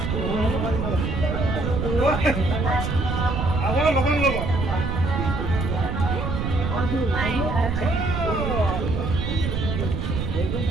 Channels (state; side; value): noise; right; rumble, 1 dB below the sound